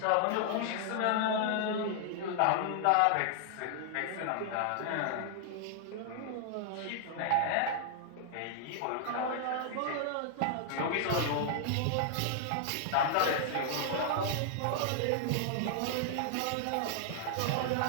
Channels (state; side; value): different; both; correlation -0.01